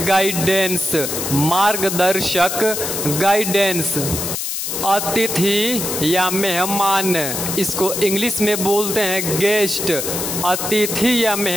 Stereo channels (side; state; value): left; noise; hiss, 3 dB below the sound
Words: गाइडेंस। मार्गदर्शक, गाइडेंस। अतिथि या मेहमान, इसको इंग्लिश में बोलते हैं गेस्ट। अतिथि या